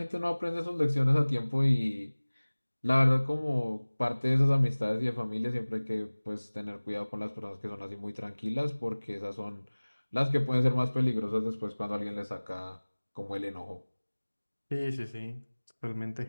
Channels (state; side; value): inverted; both; correlation -1.00